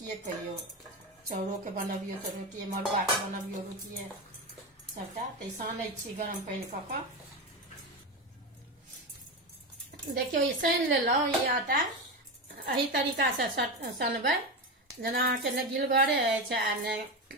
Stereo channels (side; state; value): both; normal; correlation 0.17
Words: कहियो, चाउरो के बनबियो तो रोटिए, मड़ुआ के बनबियो रोटिए सबटा। तो सानै छी गरम पानी कऽ कऽ। देखियो ई सान लेलहुँ। ई आटा एही तरीका से सनबै जेना अहाँके ने गिलगरे अछि आ ने